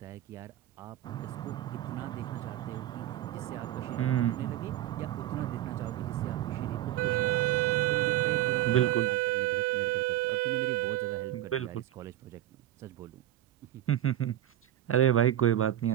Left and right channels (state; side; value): quieter; left; 13.0 dB